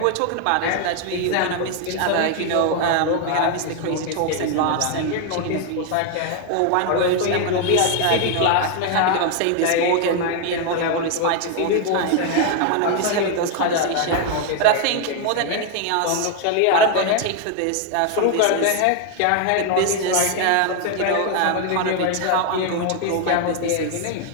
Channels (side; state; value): both; different; correlation 0.00